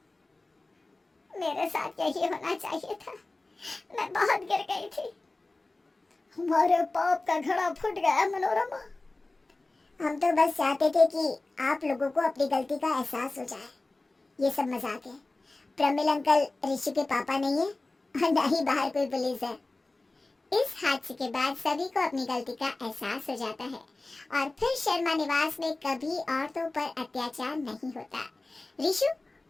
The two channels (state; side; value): quieter; right; 3.1 dB